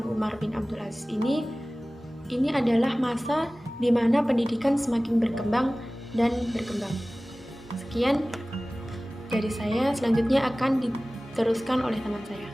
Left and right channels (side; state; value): both; normal; correlation 0.98